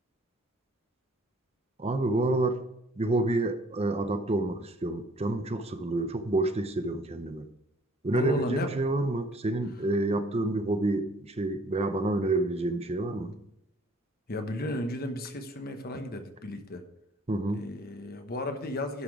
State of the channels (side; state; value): both; normal; correlation 0.57